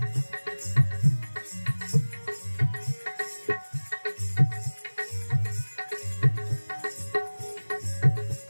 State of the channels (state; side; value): inverted; both; correlation -1.00